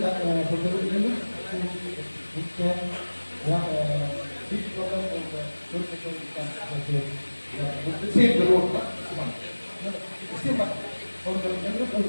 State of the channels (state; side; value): inverted; both; correlation -1.00